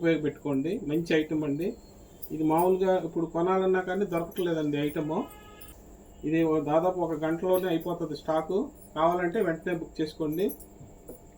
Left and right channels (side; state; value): both; identical; correlation 1.00